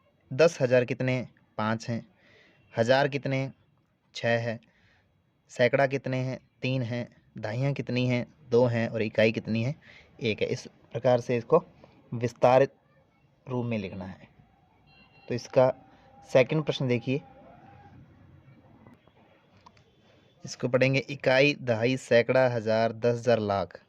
10,000 कितने 5 हैं, हजार कितने 6 है, सैकड़ा कितने हैं 3 हैं, दहाइयाँ कितनी हैं 2 हैं और इकाई कितनी है 1 है। इस प्रकार से इसको विस्तारित रूप में लिखना है। तो इसका सेकंड प्रश्न देखिए, इसको पढ़ेंगे। इकाई, दहाई, सैकड़ा, हजार, 10,000, लाख।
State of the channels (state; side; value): identical; both; correlation 1.00